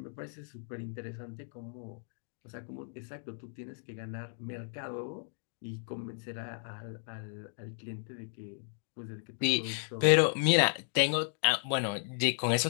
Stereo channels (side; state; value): right; silent; digital silence